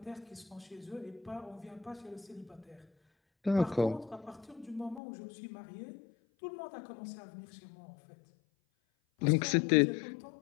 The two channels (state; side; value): drops out; right; at 5.0 s